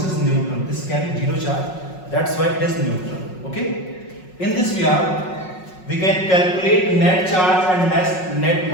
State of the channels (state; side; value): late; right; 5.4 ms